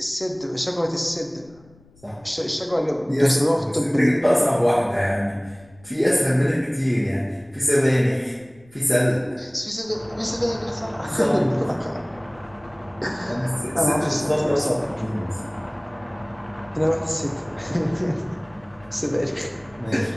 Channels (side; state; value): left; noise; rumble, 27 dB below the sound